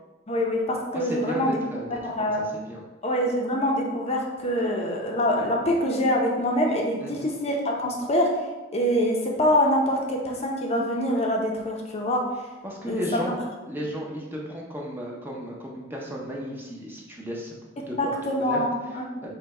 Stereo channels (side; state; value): both; normal; correlation 0.22